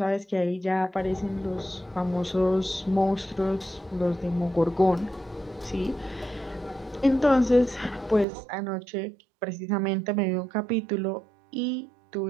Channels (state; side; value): drops out; left; at 8.2 s